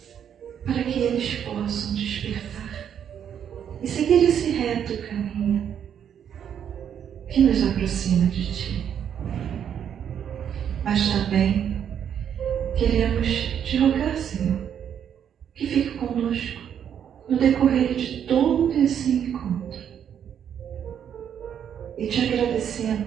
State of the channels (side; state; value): left; quieter; 8.8 dB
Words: para que eles possam despertar e seguir esse reto caminho que nos aproxima de Ti. Mas também queremos Te rogar, Senhor, que fique conosco no decorrer de todo esse encontro. E Te